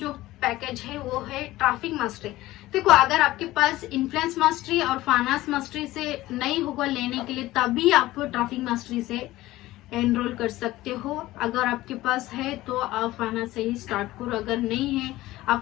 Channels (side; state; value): right; quieter; 17.0 dB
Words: पैकेज है वो है ट्रैफिक मास्टरी। देखो, अगर आपके पास इन्फ्लुएंस मास्टरी और फाइनेंस मास्टरी से नहीं होगा लेने के लिए, तभी आप ट्रैफिक मास्टरी से एनरोल कर सकते हो। अगर आपके पास है तो आप फाइनेंस से ही स्टार्ट करो, अगर नहीं है,